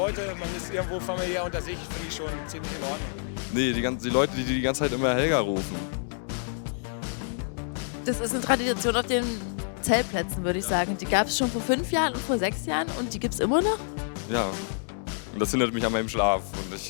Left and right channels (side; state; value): right; silent; digital silence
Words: man ist irgendwo familiär unter sich, finde ich schon ziemlich in Ordnung. Nee, die Leute, die die ganze Zeit immer Helga rufen. Das ist eine Tradition auf den Zeltplätzen, würde ich sagen. Die gab es schon vor 5 Jahren und vor 6 Jahren und die gibt es immer noch? Ja. Und das hindert mich an meinem Schlaf. Und